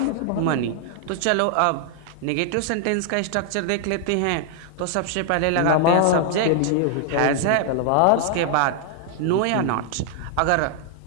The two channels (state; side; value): different; both; correlation 0.00